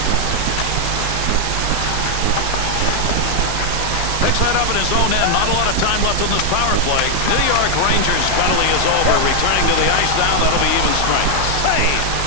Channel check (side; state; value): both; different; correlation 0.00